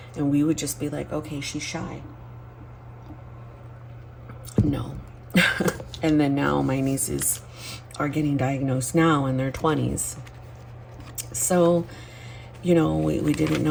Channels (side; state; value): both; identical; correlation 1.00